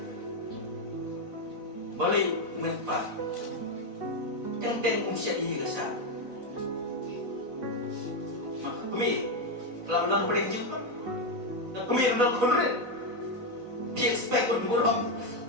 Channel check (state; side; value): late; left; 4.0 ms